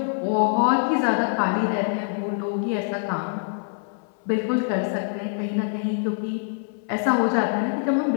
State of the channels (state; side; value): silent; right; 61 dB below the other